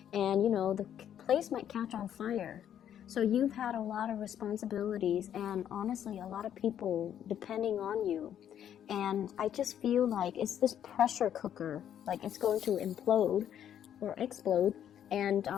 and the place might catch on fire. So you've had a lot of responsibilities and honestly a lot of people depending on you, and I just feel like it's this pressure cooker, like it's going to implode or explode. And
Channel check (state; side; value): quieter; right; 9.9 dB